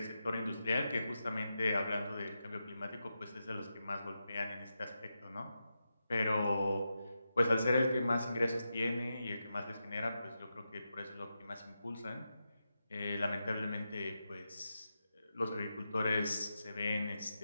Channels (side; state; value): both; inverted; correlation -0.88